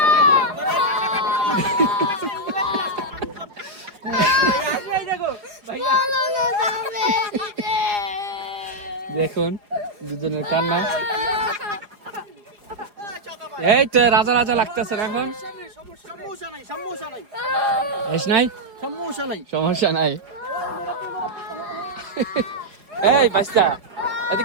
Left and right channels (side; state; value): left; late; 4.9 ms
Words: দেখুন দুজনের কান্না এই তো রাজা রাজা লাগতেছে এখন সমস্যা নাই এই বাচ্চা